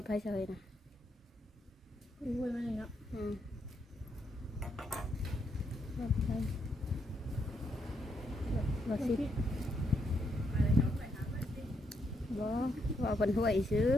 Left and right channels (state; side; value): normal; both; correlation 0.77